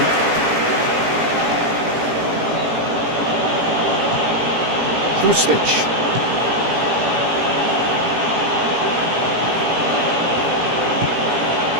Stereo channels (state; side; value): late; left; 18 ms